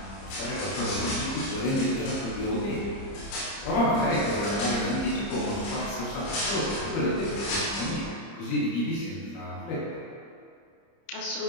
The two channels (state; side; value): late; right; 30 ms